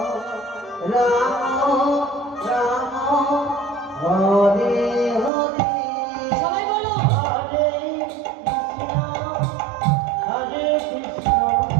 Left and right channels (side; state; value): left; drops out; at 5.3 s